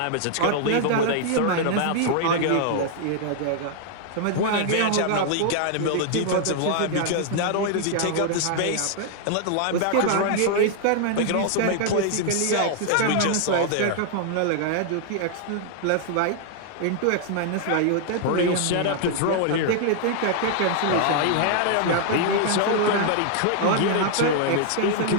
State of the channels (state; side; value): different; both; correlation 0.00